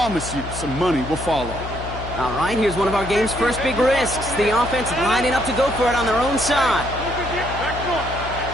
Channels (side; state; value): left; noise; hum, 9 dB below the sound